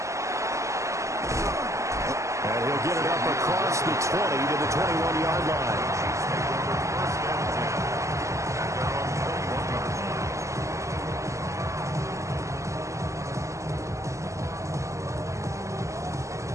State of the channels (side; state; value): left; late; 0.15 ms